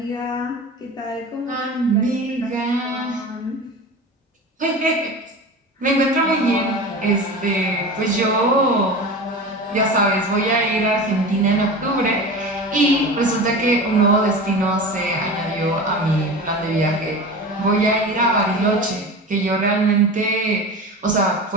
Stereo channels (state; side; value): normal; both; correlation 0.31